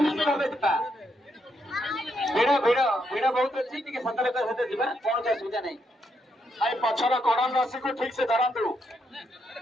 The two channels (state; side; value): normal; both; correlation 0.78